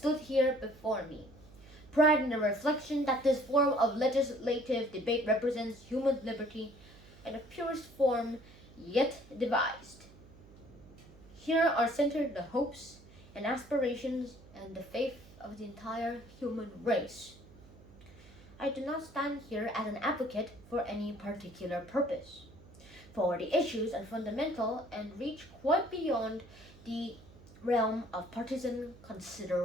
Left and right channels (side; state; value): right; noise; hum, 22 dB below the sound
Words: here before me. Pride in the reflection that this form of legislative debate represents human liberty in the purest form yet devised. Here are centered the hopes and aspirations and the faith of the entire human race. I do not stand here as an advocate for any particular purpose, for the issues are fundamental and reach quite beyond the realm of partisan